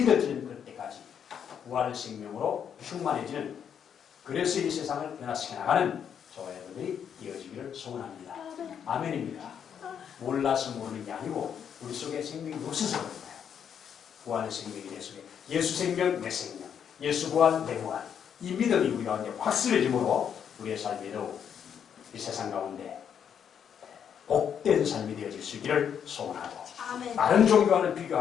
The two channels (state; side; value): quieter; right; 8.2 dB